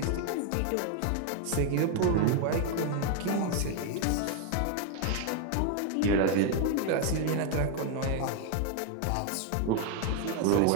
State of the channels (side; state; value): both; different; correlation 0.01